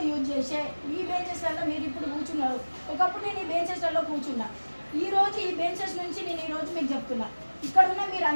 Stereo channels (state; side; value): inverted; both; correlation -1.00